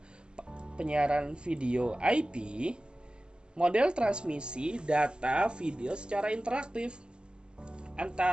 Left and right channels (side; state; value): left; late; 0.050 ms